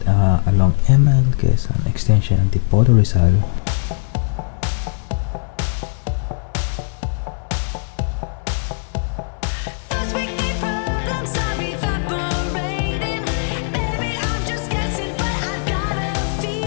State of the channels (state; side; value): silent; right; digital silence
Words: along Quezon Extension, Antipolo, Rizal.